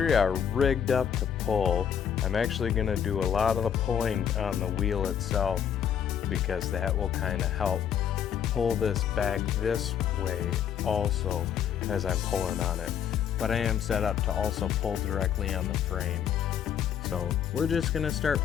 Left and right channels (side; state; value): right; quieter; 8.7 dB